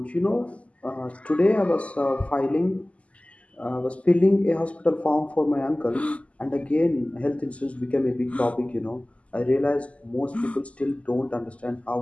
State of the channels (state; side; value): late; right; 0.064 ms